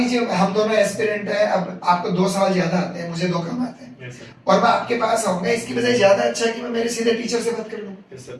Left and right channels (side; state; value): both; identical; correlation 1.00